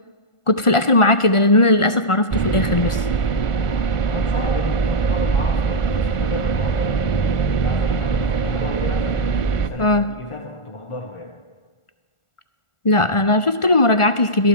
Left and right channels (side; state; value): right; late; 1.4 ms